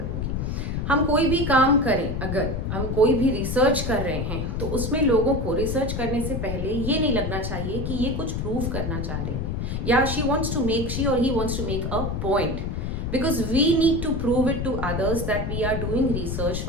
हम कोई भी काम करें, अगर हम कोई भी रिसर्च कर रहे हैं तो उसमें लोगों को रिसर्च करने से पहले ये नहीं लगना चाहिए कि ये कुछ प्रूव करना चाह रहे हैं या शी और he wants to make a point, because we need to prove it to others that we are doing research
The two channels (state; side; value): noise; left; rumble, 2 dB below the sound